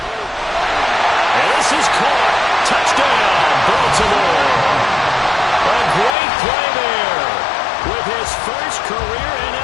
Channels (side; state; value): right; drops out; at 6.2 s